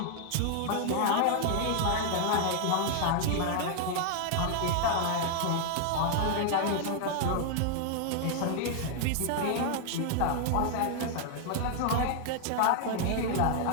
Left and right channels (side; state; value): both; different; correlation 0.00